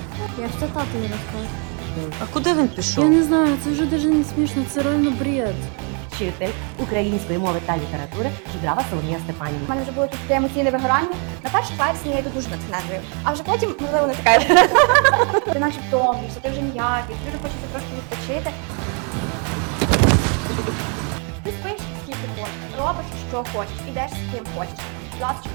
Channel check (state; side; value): quieter; left; 37.8 dB